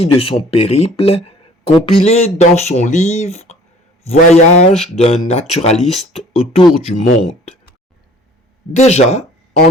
de son périple, compilé dans son livre « Voyage d'un naturaliste autour du monde ». Déjà,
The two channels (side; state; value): both; normal; correlation 0.51